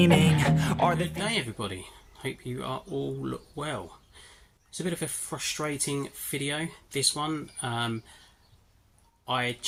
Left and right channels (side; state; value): both; identical; correlation 1.00